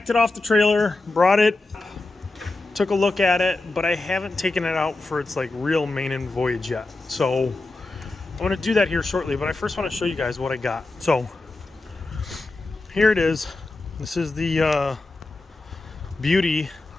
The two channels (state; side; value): quieter; right; 3.2 dB